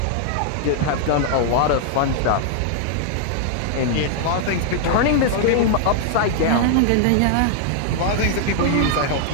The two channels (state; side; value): different; both; correlation 0.00